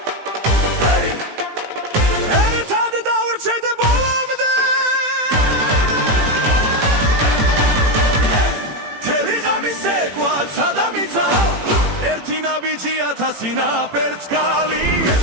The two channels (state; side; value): late; left; 18 ms